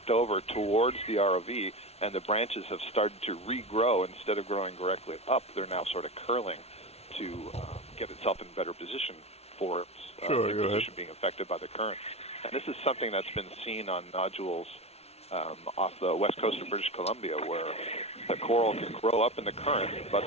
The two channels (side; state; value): right; late; 0.31 ms